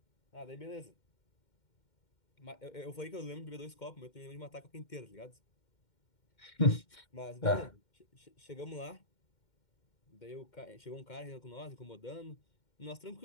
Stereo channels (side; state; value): right; late; 2.1 ms